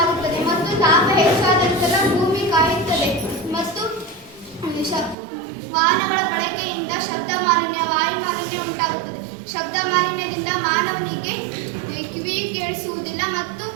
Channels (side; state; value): left; drops out; at 5.2 s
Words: ಮತ್ತು ತಾಪ ಹೆಚ್ಚಾದ ನಂತರ ಭೂಮಿ ಕಾಯುತ್ತದೆ ಮತ್ತು ವಾಹನಗಳ ಬಳಕೆಯಿಂದ ಶಬ್ದ ಮಾಲಿನ್ಯ, ವಾಯು ಮಾಲಿನ್ಯ ಉಂಟಾಗುತ್ತದೆ. ಶಬ್ದ ಮಾಲಿನ್ಯದಿಂದ ಮಾನವನಿಗೆ ಕಿವಿ ಕೇಳಿಸುವುದಿಲ್ಲ ಮತ್ತು